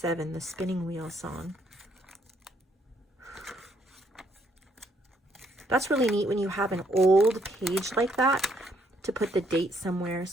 the spinning wheel song. That's really neat when you have an old page like that to put the date somewhere.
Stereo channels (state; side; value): normal; both; correlation 0.71